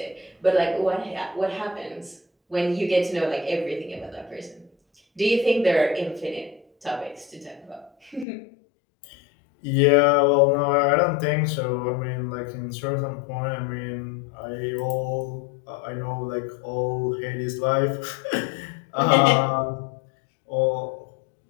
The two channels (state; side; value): drops out; right; at 8.2 s